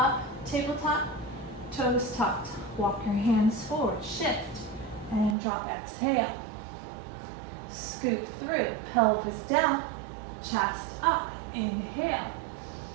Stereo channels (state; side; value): drops out; left; at 5.4 s